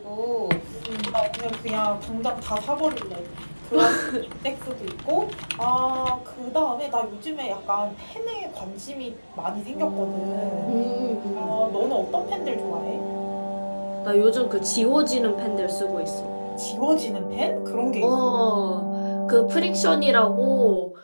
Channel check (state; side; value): inverted; both; correlation -1.00